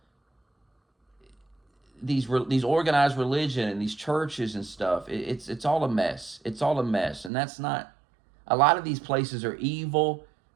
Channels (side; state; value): left; drops out; at 7.3 s